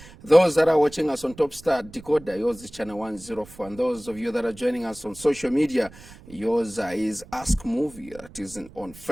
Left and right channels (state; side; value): noise; right; rumble, 20 dB below the sound